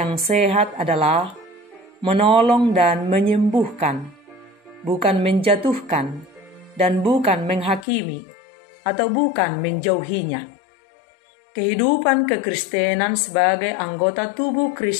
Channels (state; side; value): drops out; right; at 7.9 s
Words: sehat adalah menolong dan menyembuhkan, bukan menjatuhkan, dan bukan menghakimi, atau bukan menjauhinya. Kehidupan kekristenan sebagai anggota tubuh